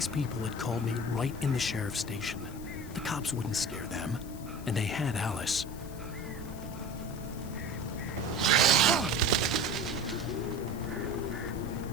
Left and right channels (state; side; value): noise; left; hiss, 19 dB below the sound